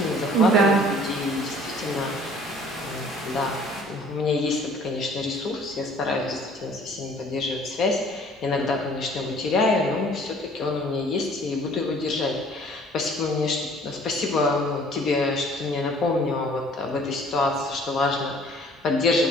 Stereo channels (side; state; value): both; normal; correlation 0.54